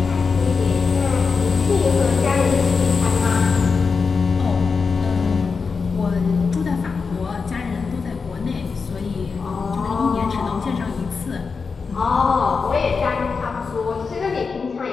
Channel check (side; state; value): right; quieter; 5.0 dB